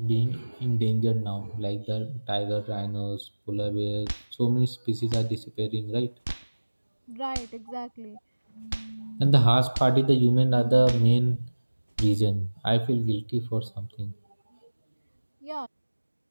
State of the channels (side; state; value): both; inverted; correlation -1.00